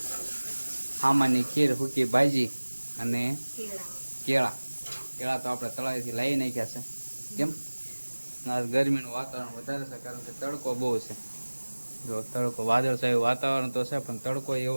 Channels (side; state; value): both; inverted; correlation -1.00